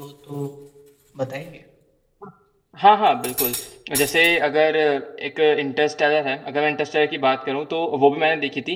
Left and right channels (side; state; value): both; identical; correlation 1.00